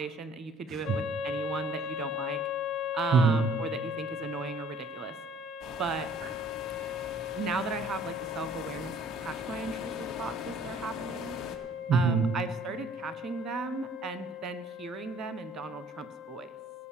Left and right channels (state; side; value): normal; both; correlation 0.55